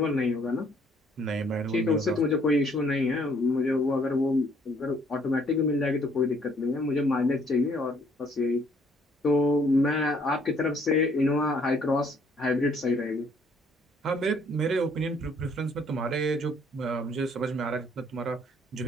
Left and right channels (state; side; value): normal; both; correlation 0.64